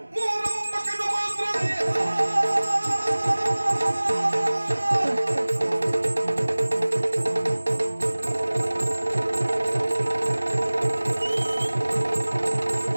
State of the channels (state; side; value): inverted; both; correlation -1.00